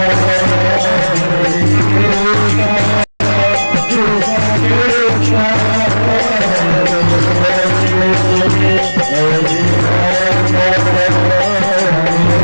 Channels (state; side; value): inverted; both; correlation -1.00